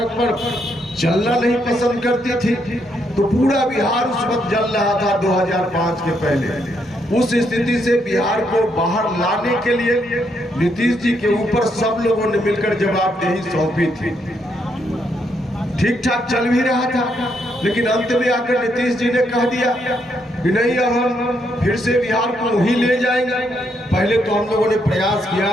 पर चलना नहीं पसंद करती थी। तो पूरा बिहार उस वक्त जल रहा था 2005 के पहले। उस स्थिति से बिहार को बाहर लाने के लिए नीतीश जी के ऊपर सब लोगों ने मिलकर जवाबदेही सौंपी थी। ठीक ठाक चल भी रहा था, लेकिन अंत में आकर नीतीश जी ने कह दिया कि नहीं, अब हम फिर से बिहार को वहीं ले जाएंगे। पहले तो हम लोगों ने प्रयास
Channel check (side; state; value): both; normal; correlation 0.76